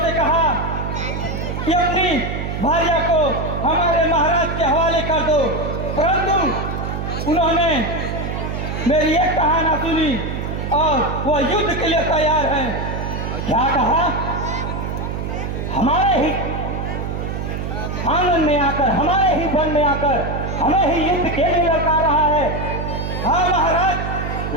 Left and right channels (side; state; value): right; noise; hum, 4 dB below the sound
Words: कहा कि अपनी भार्या को हमारे महाराज के हवाले कर दो, परंतु उन्होंने मेरी एक कहा ना सुनी और वो युद्ध के लिए तैयार हैं। क्या कहा? हमारे ही आंगन में आकर, हमारे ही वन में आकर हमें ही युद्ध के लिए लड़का रहा है। हाँ महाराज,